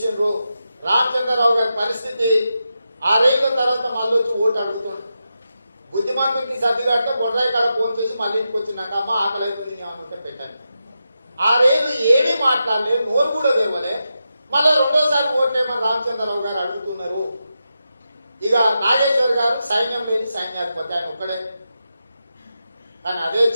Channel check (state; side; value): inverted; both; correlation -0.88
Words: రామచంద్రరావు గారి పరిస్థితి 6 ఏళ్ల తర్వాత మళ్ళీ వచ్చి ఓటు అడుగుతుండ్రు. బుద్ధిమంతుడికి సర్ది కట్ట బొడ్రాయి కాడ ఫోన్ చేసి మళ్ళీ ఇంటికి వచ్చినాక అమ్మ ఆకలి అవుతుంది ఏమనుంటే పెట్టండి. 6 ఏళ్ళు ఏమీ మాట్లాడలేదు, నోరు కూడా తెరవలే. మళ్ళీ 2వసారి ఓట్లేమని రామచంద్రరావు గారు అడుగుతున్నారు. ఇక నాగేశ్వర్ గారు సైన్యం లేని సైన్యాధిపతి, ఆయన ఒక్కడే. కానీ అదే